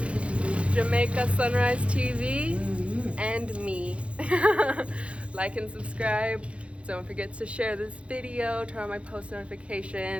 Jamaica Sunrise TV. And me. Like and subscribe. Don't forget to share this video, turn on my post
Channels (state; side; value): late; left; 0.061 ms